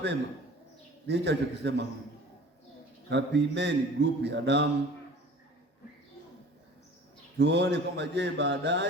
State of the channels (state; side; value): normal; both; correlation 0.44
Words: ni hicho alichokisema huyu, kapimeni grupu ya damu, tuone kwamba je,